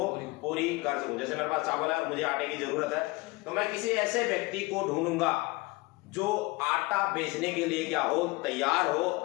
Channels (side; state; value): right; quieter; 23.1 dB